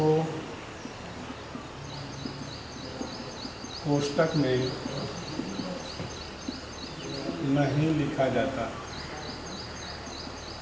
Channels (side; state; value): both; identical; correlation 1.00